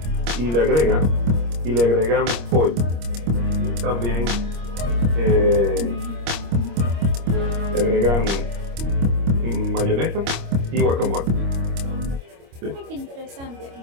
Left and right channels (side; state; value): left; late; 25 ms